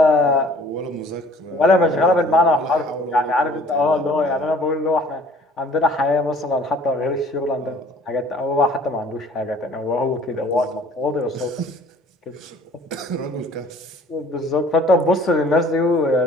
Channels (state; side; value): normal; both; correlation 0.52